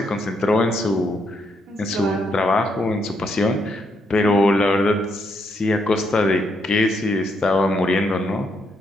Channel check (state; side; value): normal; both; correlation 0.76